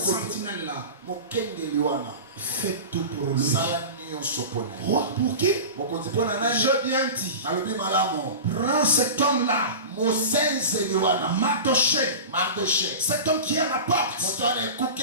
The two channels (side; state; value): both; inverted; correlation -0.30